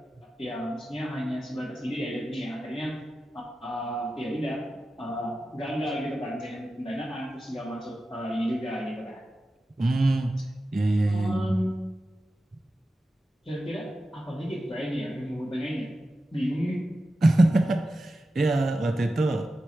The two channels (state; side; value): normal; both; correlation 0.92